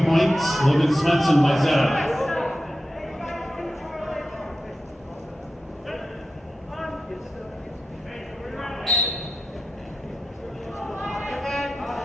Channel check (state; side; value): normal; both; correlation 0.91